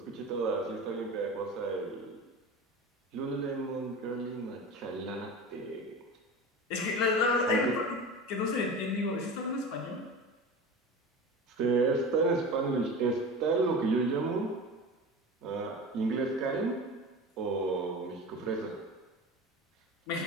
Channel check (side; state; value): both; normal; correlation 0.32